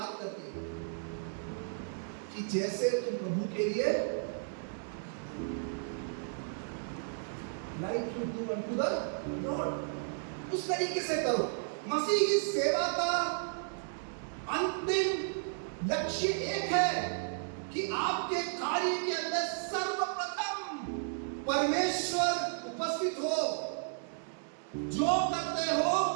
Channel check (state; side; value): silent; left; digital silence